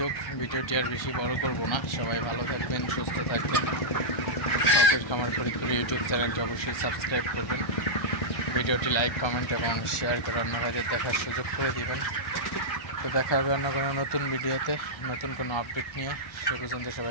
ভিডিওটি আর বেশি বড় করব না। সবাই ভালো থাকবেন, সুস্থ থাকবেন। শখের খামার ফরিদপুর ইউটিউব চ্যানেলটি অবশ্যই সাবস্ক্রাইব করবেন। ভিডিওটি লাইক, কমেন্ট এবং শেয়ার করে অন্য ভাইদের দেখার সুযোগ করে দিবেন। তো দেখা হবে অন্য কোনো নতুন ভিডিওতে, নতুন কোনো আপডেট নিয়ে। সে পর্যন্ত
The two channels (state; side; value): late; right; 1.3 ms